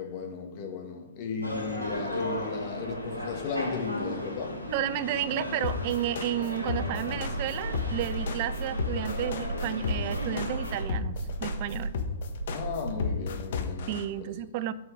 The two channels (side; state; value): both; inverted; correlation -0.40